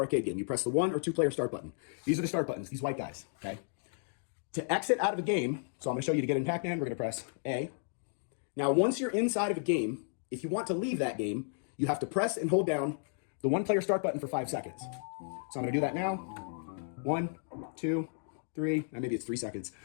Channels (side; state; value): right; silent; digital silence